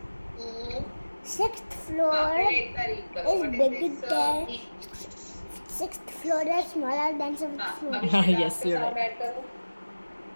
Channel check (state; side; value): inverted; both; correlation -1.00